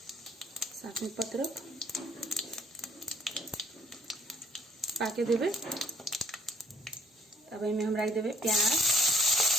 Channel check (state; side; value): normal; both; correlation 0.60